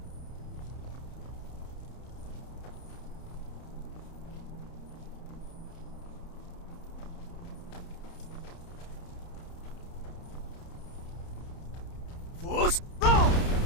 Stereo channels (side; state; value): right; late; 30 ms